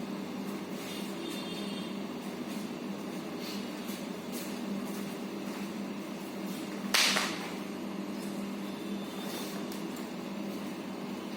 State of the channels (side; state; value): both; identical; correlation 1.00